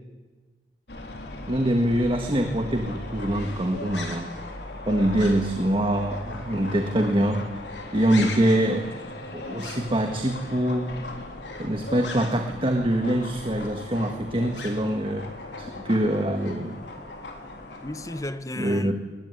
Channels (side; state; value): both; normal; correlation 0.77